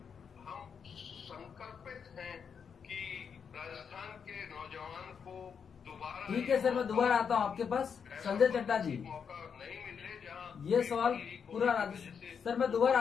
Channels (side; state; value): right; quieter; 6.7 dB